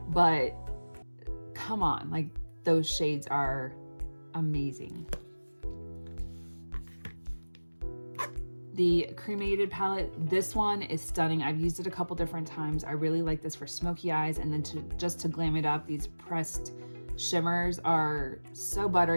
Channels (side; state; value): both; inverted; correlation -1.00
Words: but come on, like those shades are amazing. The Cremated palette, this one is stunning. I've used it a couple different times. I really like this for smoky eyes, and then just to glam it up, these pressed shimmers are so